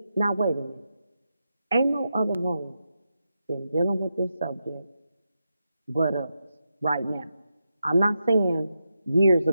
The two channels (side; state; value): both; inverted; correlation -0.87